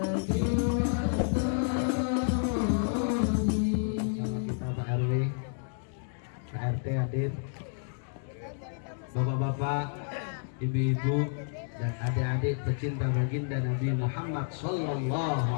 Bapak-bapak, ibu-ibu, dan adik-adik pecinta baginda Nabi Muhammad Sallallahu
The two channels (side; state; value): right; silent; digital silence